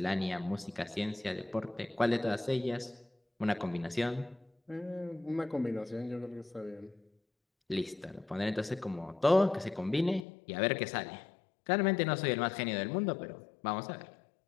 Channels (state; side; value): drops out; right; at 10.2 s